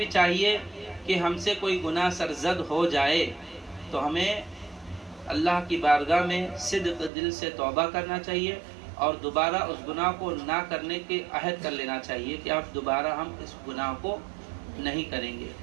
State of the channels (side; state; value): left; drops out; at 7.1 s